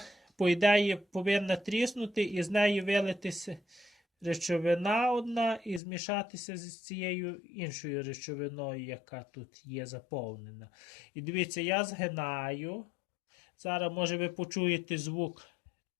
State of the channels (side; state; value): right; drops out; at 5.8 s